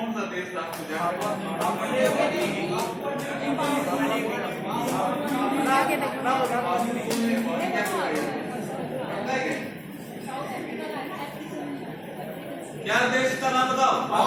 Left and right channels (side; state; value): both; identical; correlation 1.00